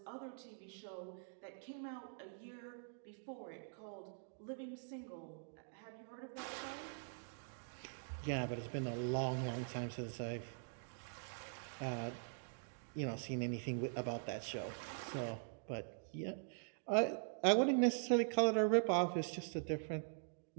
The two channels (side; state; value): left; silent; digital silence